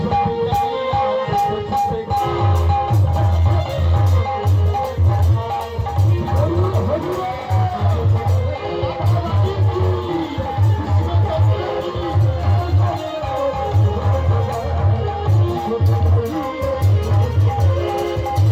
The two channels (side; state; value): both; identical; correlation 1.00